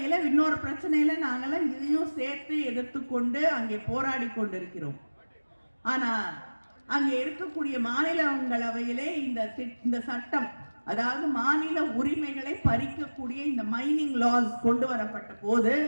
இன்னொரு பிரச்சனையில நாங்கெல்லாம் இதையும் சேர்த்து எதிர்த்து கொண்டு அங்கே போராடி கொண்டிருக்கிறோம். ஆனா அங்கே இருக்கக்கூடிய மாநிலங்களவையிலே இந்த சட்டம், அதாவது மாநில உரிமைகளை பறிக்கக்கூடிய இந்த மைனிங் லாஸ் கொண்டு வரப்பட்ட போது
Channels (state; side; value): inverted; both; correlation -1.00